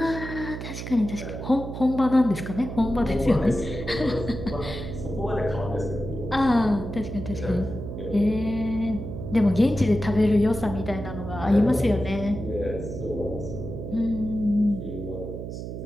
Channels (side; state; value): right; noise; hum, 8 dB below the sound